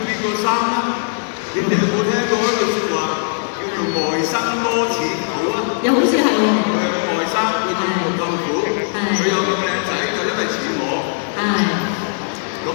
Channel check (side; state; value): right; silent; 67 dB below the other